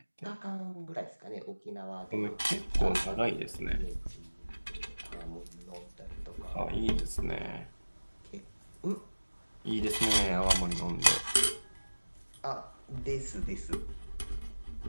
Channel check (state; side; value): inverted; both; correlation -1.00